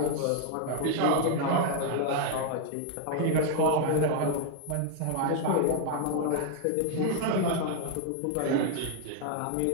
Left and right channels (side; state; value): both; different; correlation 0.00